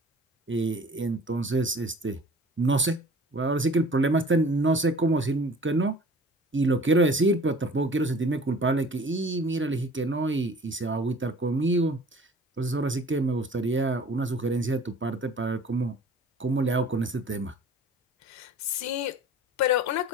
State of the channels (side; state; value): both; normal; correlation 0.47